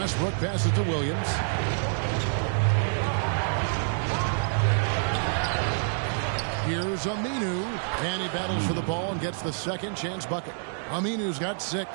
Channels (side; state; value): left; silent; digital silence